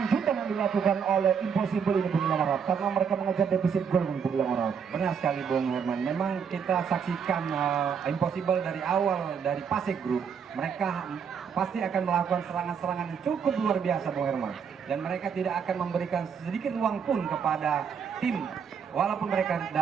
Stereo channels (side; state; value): left; quieter; 6.9 dB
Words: yang dilakukan oleh Impossible ini, Bung Ilham Harahap, karena mereka mengejar defisit gol, Bung Ilham Harahap. Benar sekali Bung Herman. Memang kita saksikan Impossible dari awal dari Pasek Group, mereka pasti akan melakukan serangan-serangan yang cukup luar biasa Bung Herman, dan mereka tidak akan memberikan sedikit ruang pun kepada tim walaupun mereka